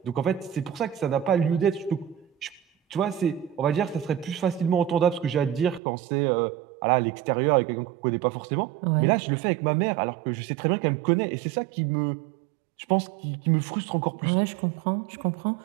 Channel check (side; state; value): left; drops out; at 5.8 s